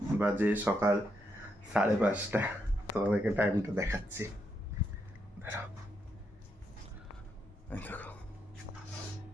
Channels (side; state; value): both; normal; correlation 0.80